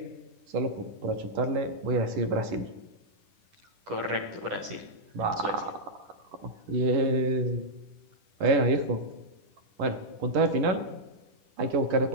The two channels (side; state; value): left; late; 10 ms